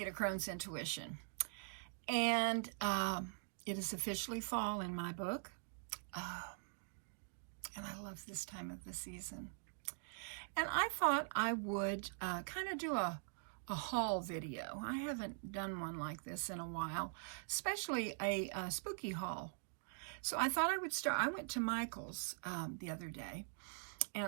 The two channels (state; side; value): silent; left; digital silence